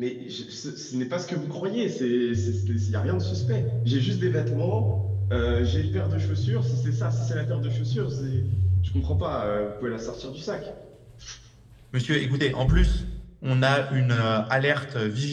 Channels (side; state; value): both; identical; correlation 1.00